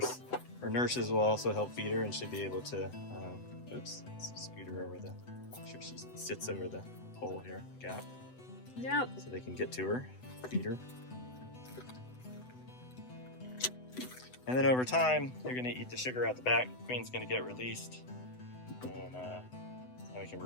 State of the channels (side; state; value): right; late; 8.0 ms